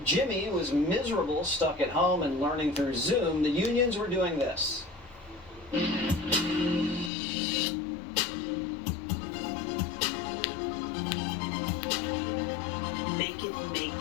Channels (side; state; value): right; drops out; at 7.1 s